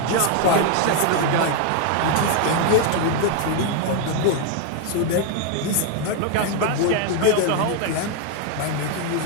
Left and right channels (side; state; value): both; different; correlation 0.01